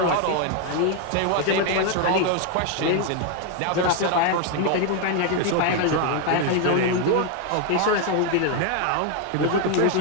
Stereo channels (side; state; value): both; different; correlation 0.01